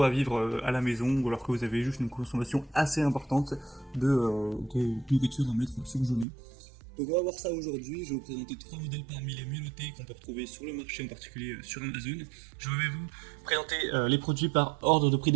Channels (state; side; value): drops out; left; at 6.2 s